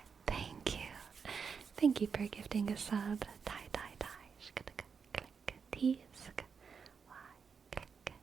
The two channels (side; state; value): left; quieter; 6.0 dB